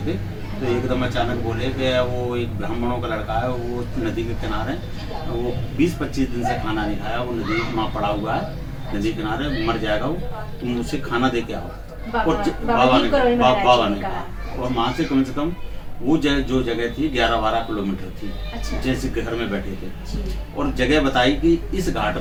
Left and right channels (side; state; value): both; identical; correlation 1.00